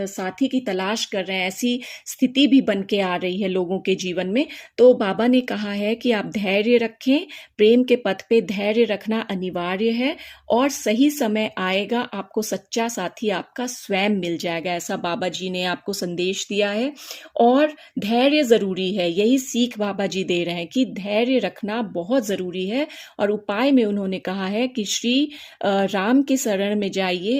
की तलाश कर रहे हैं, ऐसी स्थिति भी बन के आ रही है लोगों के जीवन में, तो बाबा ने कहा है कि आप धैर्य रखें। प्रेम के पथ पे धैर्य रखना अनिवार्य है और सही समय आएगा, आपको सच्चा साथी आपका स्वयं मिल जाएगा, ऐसा बाबा जी ने आपको संदेश दिया है। और धैर्य ज़रूरी है, यही सीख बाबा जी दे रहे हैं कि धैर्य रखना बहुत ज़रूरी है। और उपाय में उन्होंने कहा है कि श्री राम के शरण में जाइए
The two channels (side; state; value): both; identical; correlation 1.00